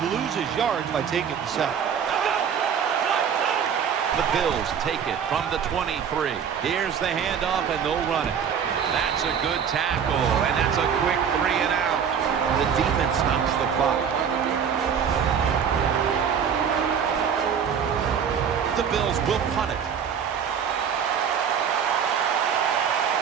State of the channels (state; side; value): quieter; left; 7.5 dB